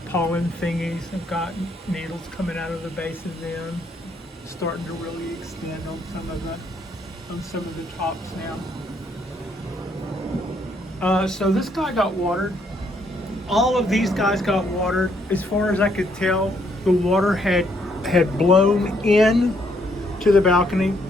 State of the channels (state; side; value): normal; both; correlation 0.71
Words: pollen thingies have got needles coming out of the base of them, starting to really extend on some of the tops now. So this guy got watered. All of these guys got watered. As far as I could tell, the water had blown in to the balcony.